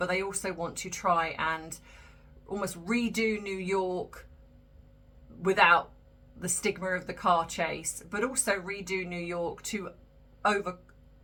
they also want to try and almost redo New York without the stigma of the car chase, but also redo New York to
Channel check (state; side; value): identical; both; correlation 1.00